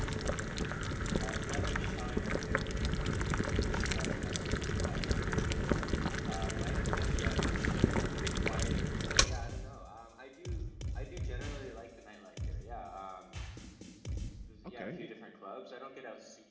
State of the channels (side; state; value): both; identical; correlation 1.00